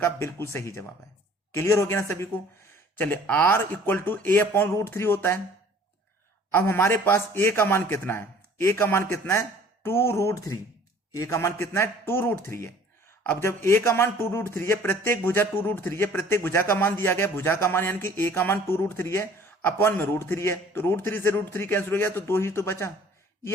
बिल्कुल सही जवाब है। क्लियर हो गया ना सभी को। चलिए, R equal to A upon √3 होता है। अब हमारे पास ए का मान कितना है, ए का मान कितना है 2√3। ए का मान कितना है 2√3 है। अब जब ए का मान 2√3 है, प्रत्येक भुजा 2√3 है, प्रत्येक भुजा का मान दिया गया, भुजा का मान यानी कि ए का मान 2√3 है, अपॉन में √3 है, तो √3 से √3 कैंसिल हो गया तो 2 ही तो बचा। ये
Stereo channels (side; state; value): both; normal; correlation 0.51